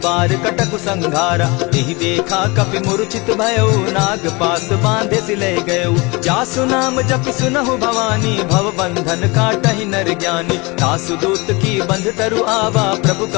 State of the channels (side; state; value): right; quieter; 26.1 dB